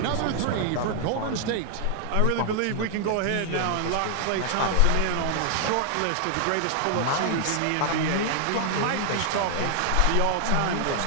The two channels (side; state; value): both; different; correlation 0.00